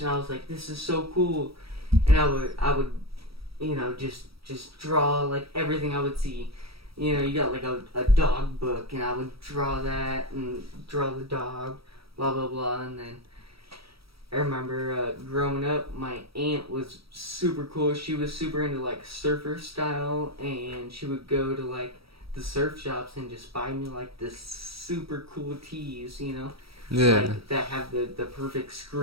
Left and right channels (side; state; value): left; late; 0.76 ms